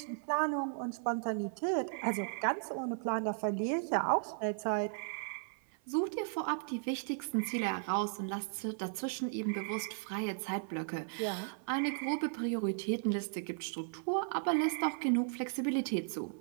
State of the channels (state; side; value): silent; left; 54 dB below the other